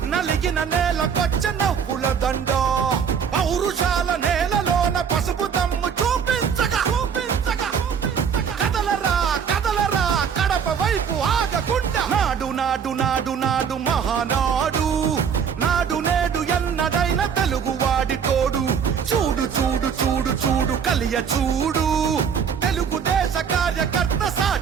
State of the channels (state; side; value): quieter; left; 7.2 dB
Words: నలిగిన నేలకొచ్చ నవ్వుల దండ పౌరుషాల నేలలోన పసుపు దమ్ము చూపించగా కదలరా కదలరా కడప వైపు ఆగకుండా నాడు నాడు నాడు నాడు మహానాడు నాడు నేడు ఎన్నడైన తెలుగువాడి తోడు చూడు చూడు చూడు చూడు కలియ చూడు తెలుగుదేశ కార్యకర్త